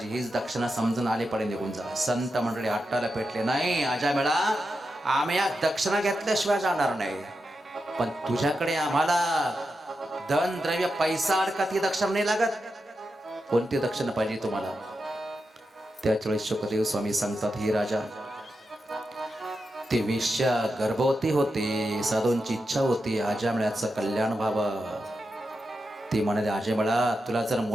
हीच दक्षिणा समजून आले पडे निघून जा. संत मंडळी हट्टाला पेटले, नाही अजय मेळा, आम्ही या दक्षिणा घेतल्याशिवाय जाणार नाही, पण तुझ्याकडे आम्हाला धन द्रव्य पैसा अडका ती दक्षिणा नाही लागत. कोणती दक्षिणा पाहिजे तुम्हाला? त्यावेळेस शुकदेव स्वामी सांगतात, ही राजा, ती वेश्या गर्भवती होती, साधूंची इच्छा होती आजमळ्याचं कल्याण व्हावं. ती म्हणाली, आजमळा, तुला जर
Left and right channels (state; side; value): normal; both; correlation 0.88